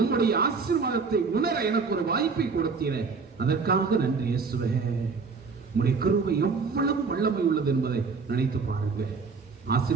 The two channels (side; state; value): left; quieter; 4.9 dB